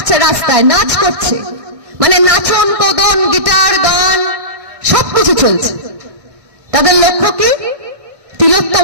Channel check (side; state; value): left; late; 1.6 ms